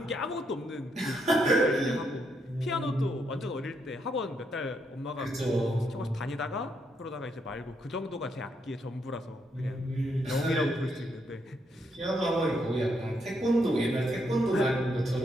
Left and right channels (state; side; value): normal; both; correlation 0.77